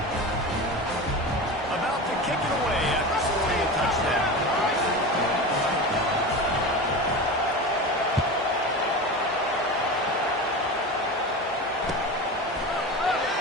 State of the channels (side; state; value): both; normal; correlation 0.27